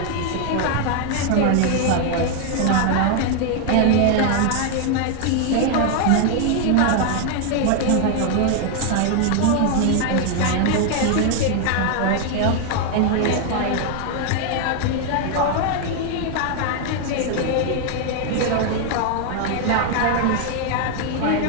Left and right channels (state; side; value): different; both; correlation 0.00